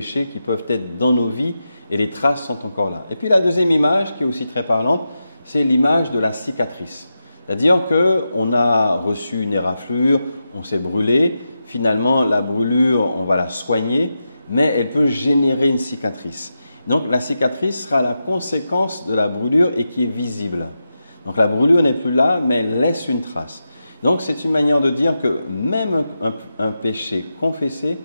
qui peuvent être dans nos vies et les traces sont encore là. Et puis la deuxième image qui est aussi très parlante, c'est l'image de la cicatrice. C'est-à-dire qu'on a reçu une éraflure, on s'est brûlé, finalement la brûlure, on va la soigner, mais elle peut générer une cicatrice. Donc la cicatrice sera la conséquence de la brûlure et qui est visible. Donc la brûlure n'est plus là, mais elle laisse une trace. Donc c'est une manière de dire que même un péché confessé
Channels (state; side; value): inverted; both; correlation -0.89